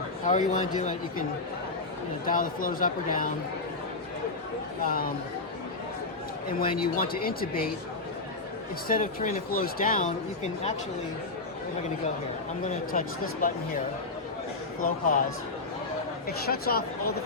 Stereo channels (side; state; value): right; quieter; 3.5 dB